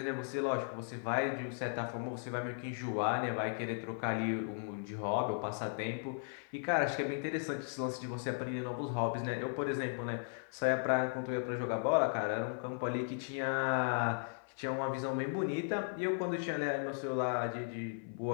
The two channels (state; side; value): silent; right; 53 dB below the other